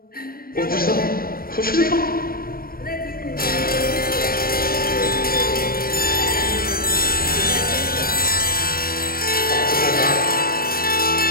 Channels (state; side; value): late; right; 0.43 ms